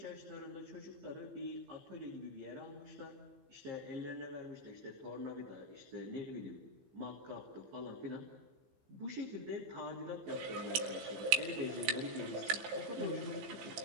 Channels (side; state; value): left; late; 15 ms